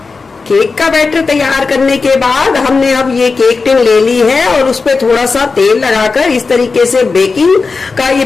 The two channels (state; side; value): quieter; right; 4.4 dB